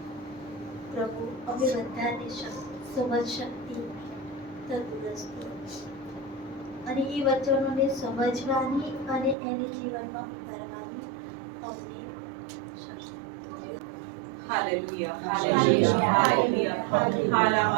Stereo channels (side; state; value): left; drops out; at 9.3 s